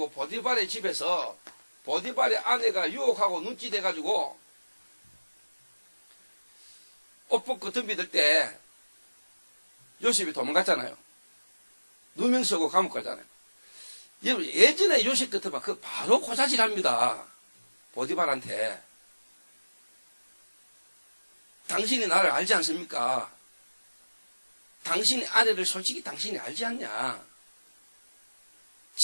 보디발의 집에서 보디발의 아내가 유혹하고 눈치 대가지고 옷 벗고 덤비들 때 요셉이 도망갔잖아요. 누명 쓰고 감옥 가잖아요. 여러분 예전에 요셉 같으면 그 바로 고자질합니다. 보디발한테. 당신이 나를 알지 않습니까? 당신의 아내를 솔직히 당신이 알지 않냐?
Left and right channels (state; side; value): inverted; both; correlation -1.00